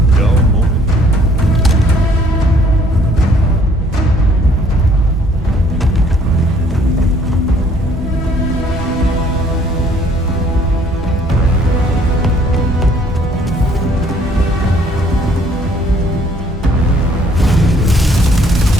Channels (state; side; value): normal; both; correlation 0.61